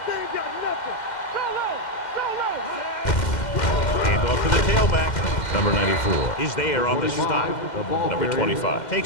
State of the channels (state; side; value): late; right; 2.1 ms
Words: They ain't got nothing. Go low. Go low. Hand off to the tailback. Number 94 is there on the stop. Number 25